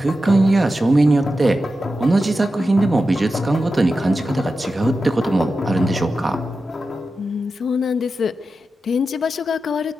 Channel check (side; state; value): both; normal; correlation 0.91